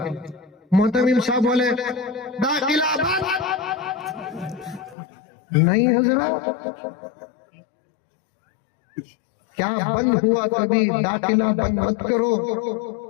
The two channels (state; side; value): drops out; right; at 5.0 s